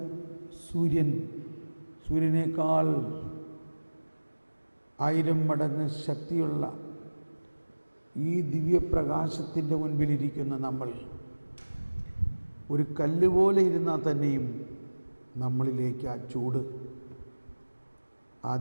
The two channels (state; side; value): inverted; both; correlation -1.00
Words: സൂര്യനേക്കാൾ 1000 മടങ്ങ് ശക്തിയുള്ള ഈ ദിവ്യപ്രകാശത്തിൻ്റെ മുൻപിലിരിക്കുന്ന നമ്മൾ ഒരു കല്ല് പോലെ ഇരുന്നാൽ തന്നെയും നമ്മളിലേക്ക് ആ ചൂട്, ആ